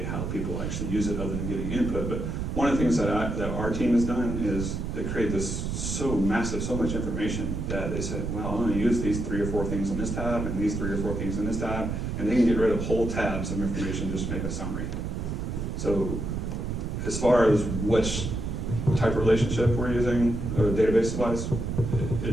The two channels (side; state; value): right; noise; rumble, 3 dB below the sound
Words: how people actually use it other than getting input, but one of the things that our team has done is they create this so massive, so much information that they said, well, I'm going to use these 3 or 4 things on this tab and these 3 or 4 things in this tab, and they can get rid of whole tabs of information just to make a summary. So as far as which type of relationship we're using, a database device,